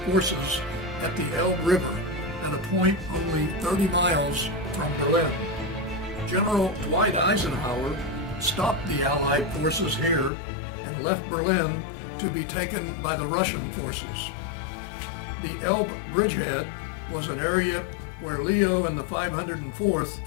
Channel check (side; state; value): right; drops out; at 10.3 s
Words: forces at the Elbe River at a point only 30 miles from Berlin. General Dwight Eisenhower stopped the Allied forces here and left Berlin to be taken by the Russian forces. The Elbe bridgehead was an area where Leo and the 504th